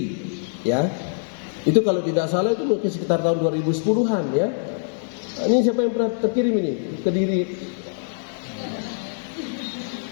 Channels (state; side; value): silent; right; digital silence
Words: ya. Itu kalau tidak salah itu mungkin sekitar tahun 2010-an, ya. Ini siapa yang pernah terkirim ini? Kediri.